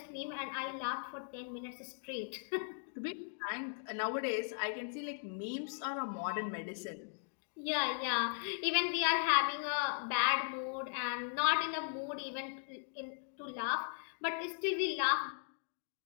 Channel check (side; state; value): right; silent; digital silence